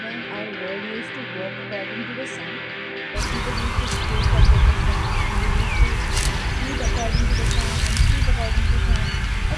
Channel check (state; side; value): identical; both; correlation 1.00